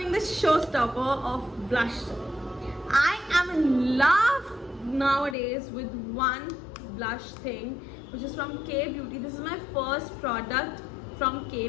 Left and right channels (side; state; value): right; drops out; at 5.4 s